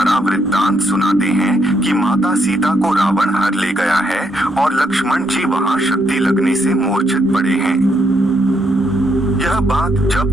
वृत्तांत सुनाते हैं कि माता सीता को रावण हर ले गया है और लक्ष्मण जी वहां शक्ति लगने से मूर्छित पड़े हैं। यह बात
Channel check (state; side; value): normal; both; correlation 0.75